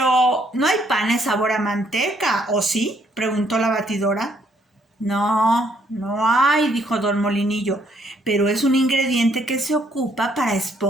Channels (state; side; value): normal; both; correlation 0.68